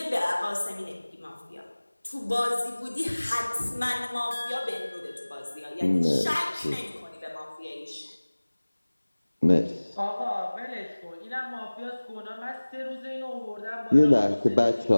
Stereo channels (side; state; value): both; inverted; correlation -1.00